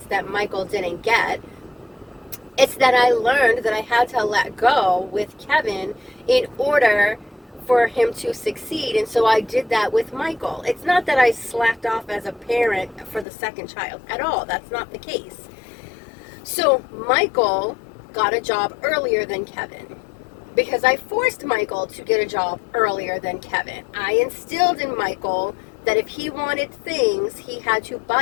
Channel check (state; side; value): drops out; right; at 13.2 s